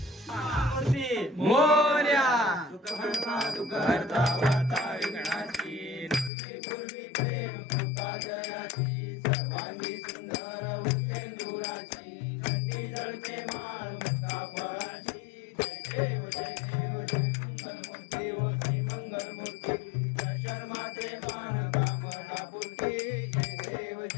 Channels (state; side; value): drops out; right; at 6.3 s